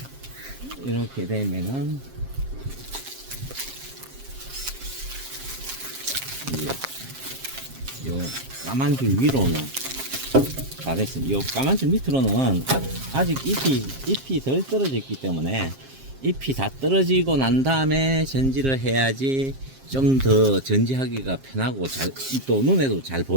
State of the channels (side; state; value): left; late; 7.5 ms